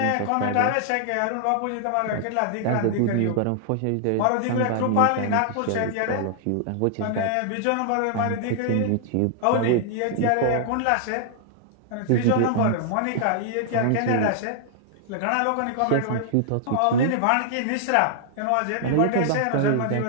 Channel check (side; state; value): both; different; correlation -0.01